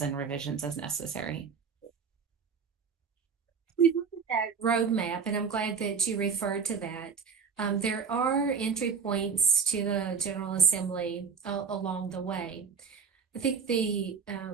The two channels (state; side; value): quieter; left; 6.0 dB